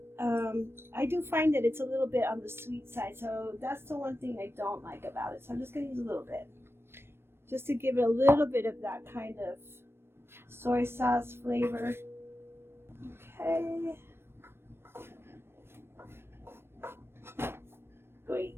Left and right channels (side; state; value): left; late; 0.12 ms